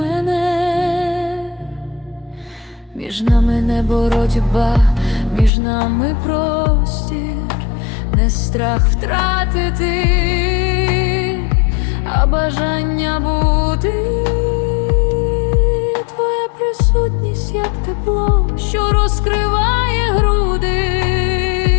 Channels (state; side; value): drops out; right; at 5.5 s